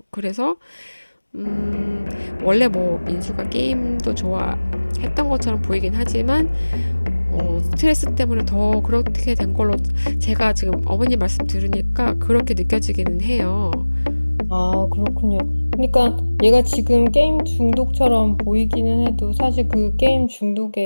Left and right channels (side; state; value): both; inverted; correlation -1.00